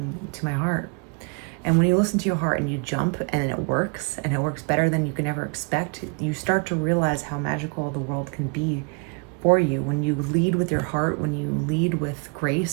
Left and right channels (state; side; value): quieter; left; 35.2 dB